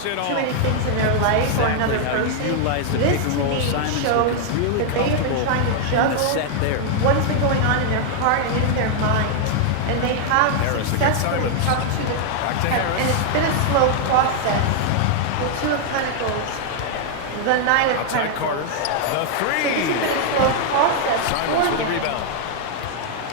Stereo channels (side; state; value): both; different; correlation 0.00